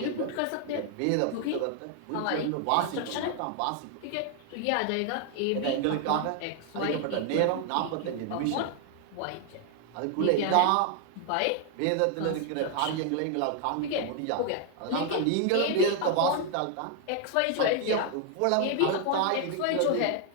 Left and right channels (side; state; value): both; different; correlation 0.00